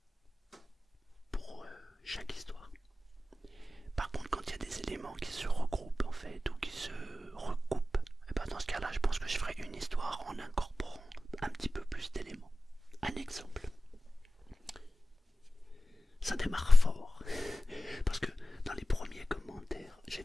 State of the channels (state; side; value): normal; both; correlation 0.94